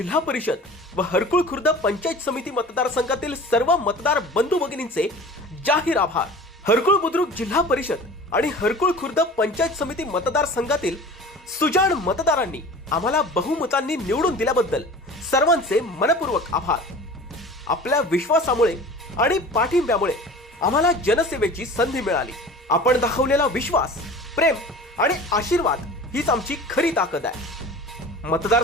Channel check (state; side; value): normal; both; correlation 0.40